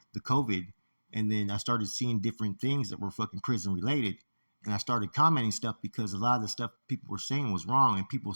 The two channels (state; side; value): inverted; both; correlation -1.00